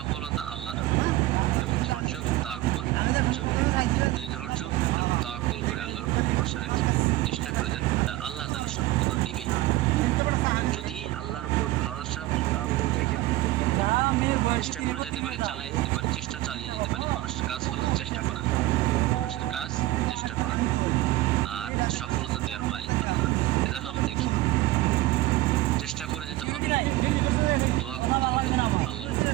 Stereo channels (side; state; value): left; quieter; 17.2 dB